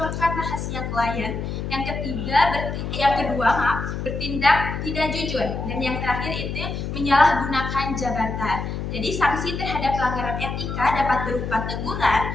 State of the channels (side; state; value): left; noise; hum, 4 dB below the sound